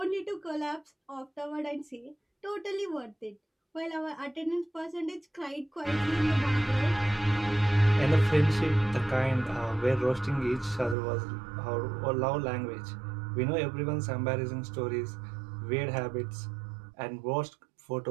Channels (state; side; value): drops out; left; at 11.0 s